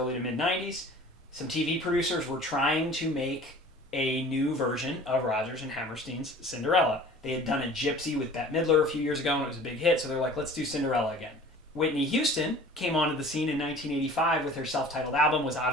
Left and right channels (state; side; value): normal; both; correlation 0.45